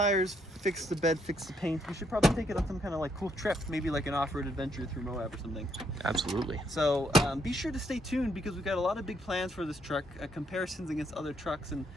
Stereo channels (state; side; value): normal; both; correlation 0.73